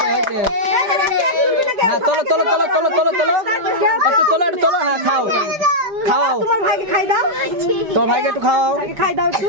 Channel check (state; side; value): late; left; 4.9 ms